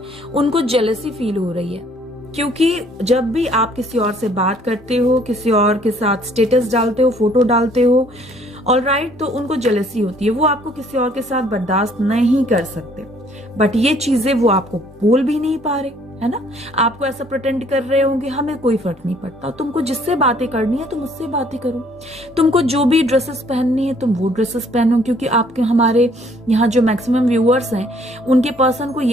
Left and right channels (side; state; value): both; normal; correlation 0.61